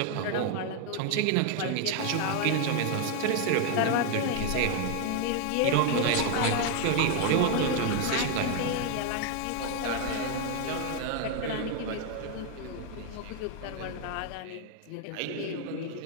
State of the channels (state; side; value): different; both; correlation 0.01